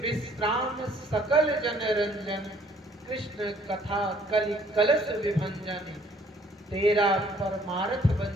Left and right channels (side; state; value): both; normal; correlation 0.60